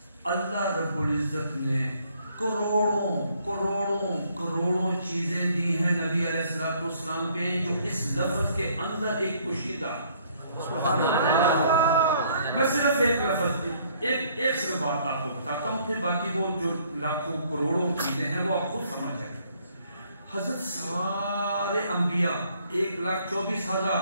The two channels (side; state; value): both; inverted; correlation -0.64